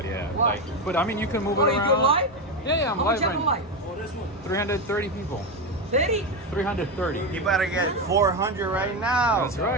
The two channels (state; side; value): normal; both; correlation 0.14